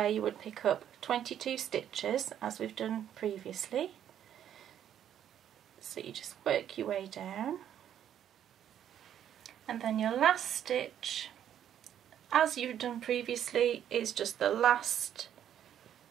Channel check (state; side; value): quieter; left; 10.1 dB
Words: you would pick up 22 stitches, as we've done previously. So you just work your way down. And then your last stitch, as you've done previously, is just the last